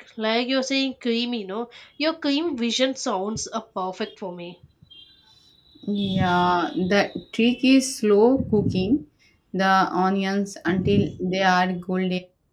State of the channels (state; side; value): identical; both; correlation 1.00